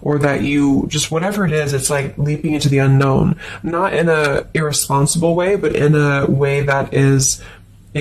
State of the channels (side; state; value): both; identical; correlation 1.00